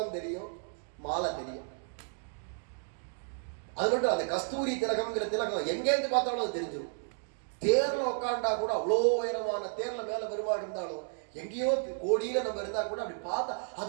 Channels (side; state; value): left; silent; 56 dB below the other